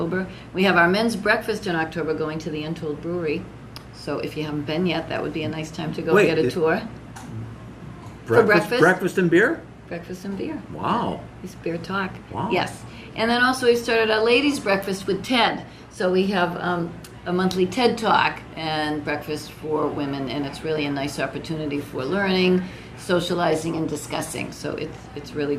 We have our men's breakfast in October going to the Untold Brewery, so if you haven't been yet, that would be a nice time to go Wait, get a tour. Breakfast and beer? Breakfast and beer. Wow. It's beer talk. Wow. Yes. And then also we started a ladies' breakfast with TED. So we have a monthly TED Talk and breakfast for women, and it's really a nice opportunity for learning, socializing, and discussing. So it's really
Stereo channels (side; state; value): both; identical; correlation 1.00